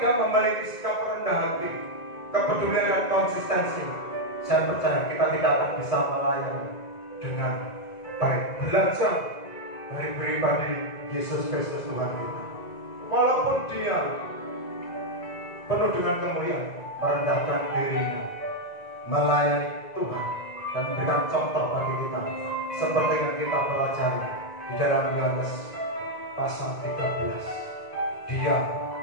memiliki sikap rendah hati, kepedulian dan konsistensi, saya percaya kita tidak akan bisa melayani dengan baik. Belajar dari pribadi Yesus Kristus Tuhan kita. Walaupun dia penuh dengan kemuliaan, merendahkan dirinya, melayani Tuhan dan memberikan contoh bagi kita, seperti yang kita pelajari di dalam Yohanes pasal 13. Dia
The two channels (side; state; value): right; late; 1.9 ms